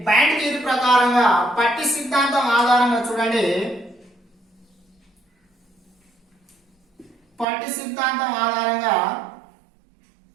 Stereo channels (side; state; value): left; drops out; at 7.5 s